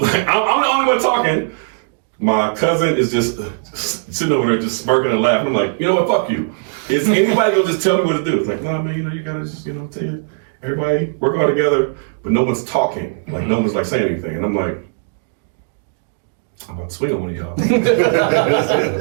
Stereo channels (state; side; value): silent; left; digital silence